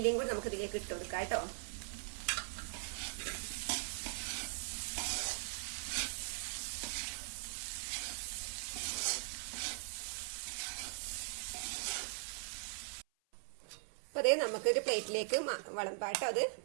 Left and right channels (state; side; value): silent; left; 51 dB below the other